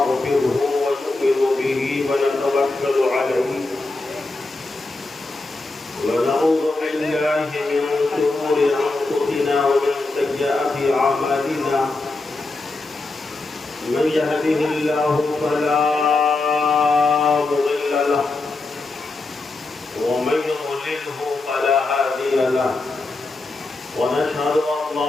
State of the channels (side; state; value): right; quieter; 3.3 dB